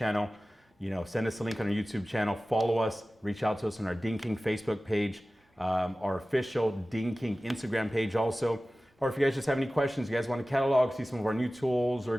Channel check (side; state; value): both; normal; correlation 0.97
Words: You know, send us a link on our YouTube channel, follow us, reach out to us on our Ding King Facebook page, our official Ding King Instagram page also. Or if you guys just have any questions, you guys want to catalog, see some of our new tools or